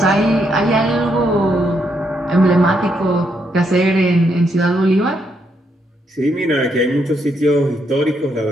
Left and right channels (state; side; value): normal; both; correlation 0.77